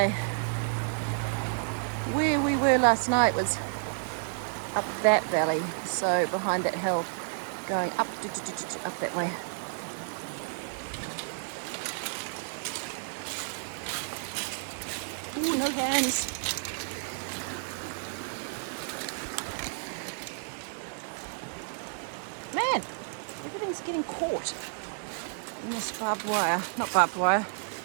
Where we were last night was up that valley, so behind that hill, going up that way. Ooh, no hands. Man, everything's getting caught in this barbed wire. Not barbed wire,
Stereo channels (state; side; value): silent; left; 57 dB below the other